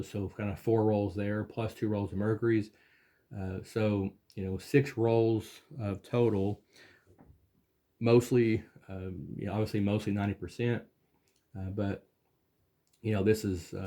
So kind of 4 rolls there, plus 2 rolls of Mercury's. So 6 rolls of total. Mostly, obviously, mostly 90%. But this is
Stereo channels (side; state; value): both; identical; correlation 1.00